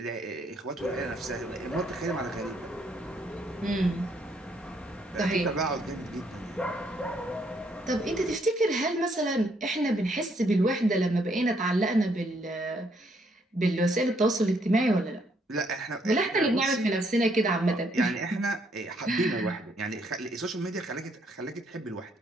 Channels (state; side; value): normal; both; correlation 0.70